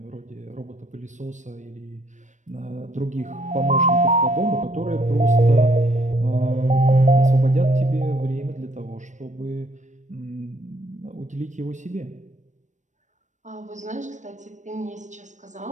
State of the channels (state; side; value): late; left; 0.35 ms